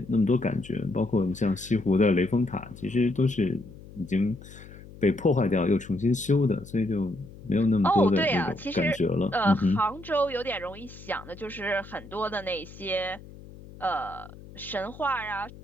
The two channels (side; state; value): left; noise; hum, 18 dB below the sound